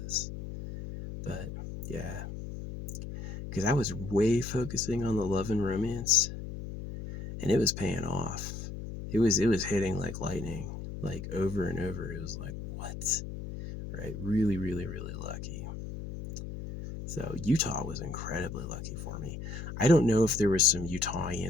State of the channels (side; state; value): left; noise; hum, 8 dB below the sound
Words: this. But yeah, because I was way focusing on the love and romance, and it was paying off. It was hitting like lightning, like over and over. It was like, what? Right? Really, really, really lucky. So Utah was incredibly lucky for me. I don't know if there was some